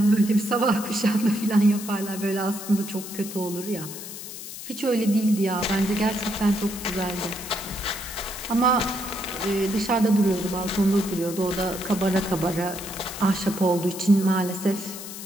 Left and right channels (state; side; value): noise; left; hiss, 11 dB below the sound